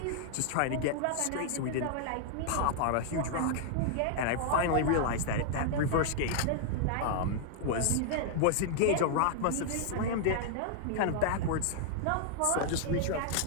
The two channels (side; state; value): both; different; correlation -0.01